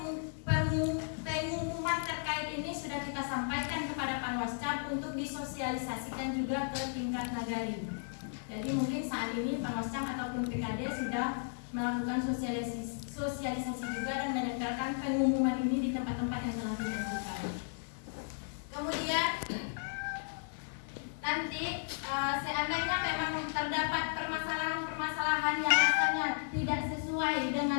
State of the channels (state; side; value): silent; right; 55 dB below the other